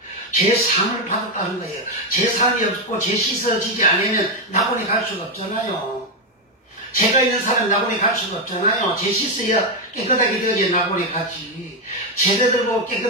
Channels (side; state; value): both; normal; correlation 0.06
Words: 죄상을 받았다는 거예요. 죄상이 없고 죄 씻어지지 않으면 낙원에 갈 수가 없잖아요. 죄가 있는 사람은 낙원에 갈 수가 없잖아요. 죄 씻어야 깨끗하게 되어야 낙원에 가지. 제자들 보고